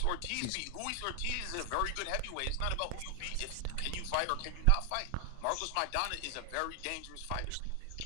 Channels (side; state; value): both; different; correlation 0.00